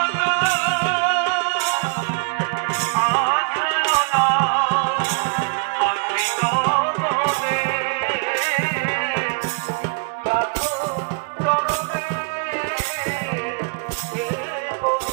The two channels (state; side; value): quieter; left; 35.7 dB